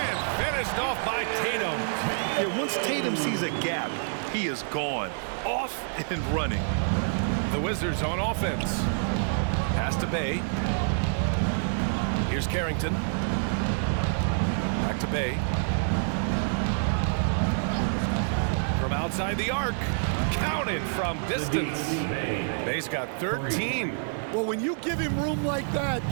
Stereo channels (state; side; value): silent; left; digital silence